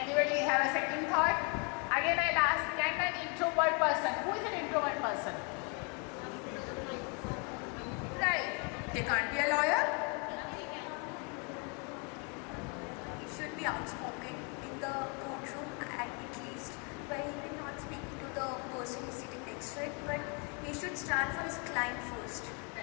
have a second thought? Again, I'll ask, can an introvert person, who is an introvert person? Right. They can't be a lawyer? He should be outspoken in the courtroom at least, where he will not speak to the person who is sitting next to it, but he should stand for his client first.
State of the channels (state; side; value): quieter; right; 35.1 dB